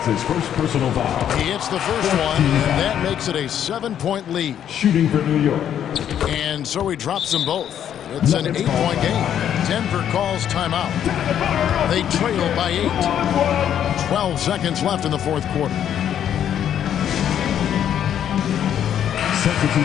his first personal foul. He hits the first one, and that makes it a 7-point lead. Shooting for New York. And so he drops them both. It's an 8-point game. Denver calls timeout. They trail by 8. 12 seconds left in the 4th quarter.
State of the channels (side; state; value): right; quieter; 9.8 dB